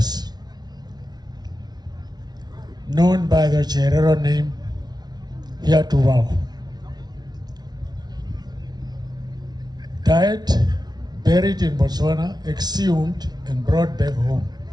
known by the Cherero name, here to vow. Died, buried in Botswana, exhumed and brought back home.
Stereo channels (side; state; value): left; late; 0.19 ms